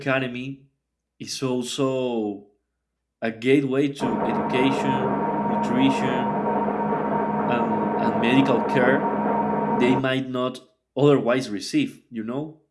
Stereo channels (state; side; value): identical; both; correlation 1.00